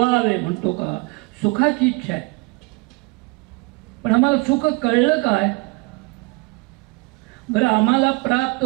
म्हणतो का, सुखाची इच्छा आहे, पण आम्हाला सुख कळलं काय, बरं आम्हाला प्राप्त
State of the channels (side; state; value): left; quieter; 27.2 dB